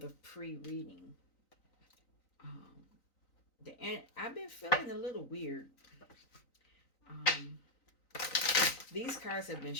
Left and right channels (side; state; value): right; late; 3.9 ms